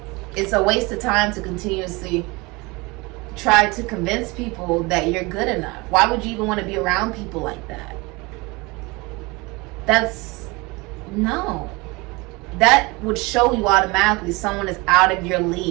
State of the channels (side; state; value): left; quieter; 25.0 dB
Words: It's a waste of time to continuously try to convince people that you're good enough. Why would you even want to be around people like that? No. That would show you automatically someone is out of your